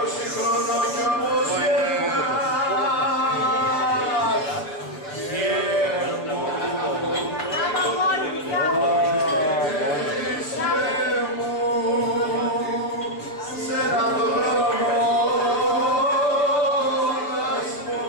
χρονών κι όμως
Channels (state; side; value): late; right; 6.6 ms